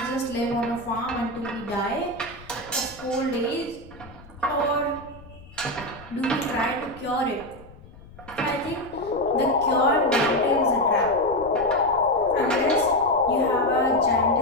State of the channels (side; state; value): left; noise; rumble, 20 dB below the sound